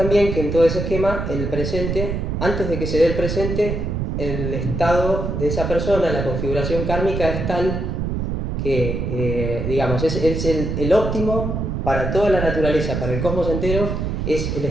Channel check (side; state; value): right; noise; rumble, 2 dB below the sound